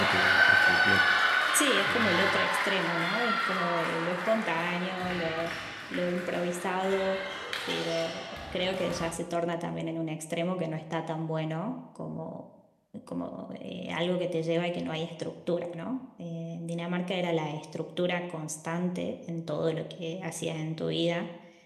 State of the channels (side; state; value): both; identical; correlation 1.00